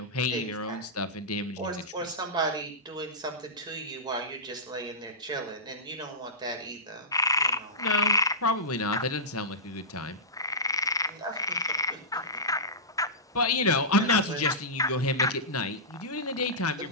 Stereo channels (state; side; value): normal; both; correlation -0.17